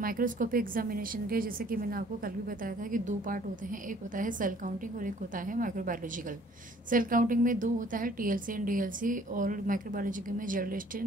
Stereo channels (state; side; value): normal; both; correlation 0.57